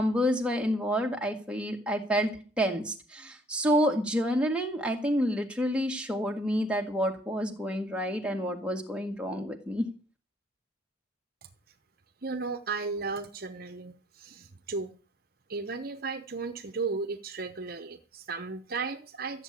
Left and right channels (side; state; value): both; normal; correlation 0.60